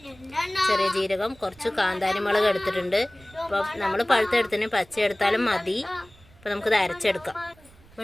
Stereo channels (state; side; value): noise; right; rumble, 26 dB below the sound